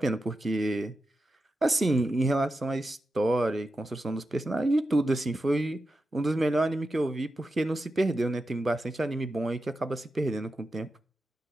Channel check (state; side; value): normal; both; correlation 0.90